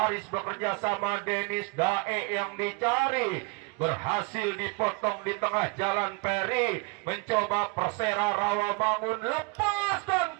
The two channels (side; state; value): left; quieter; 30.4 dB